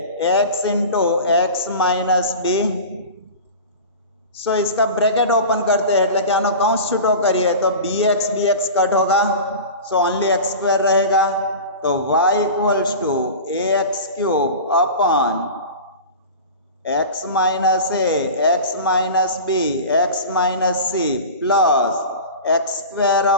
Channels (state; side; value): inverted; both; correlation -0.34